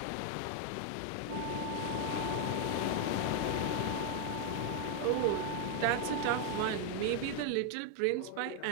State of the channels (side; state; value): both; different; correlation 0.00